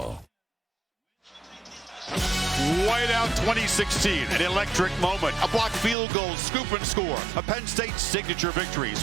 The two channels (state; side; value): drops out; left; at 6.0 s